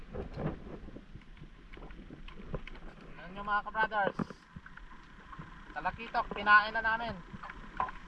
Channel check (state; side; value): identical; both; correlation 1.00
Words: Ano nyo mga ka-brothers? Talakitok, pinain na namin.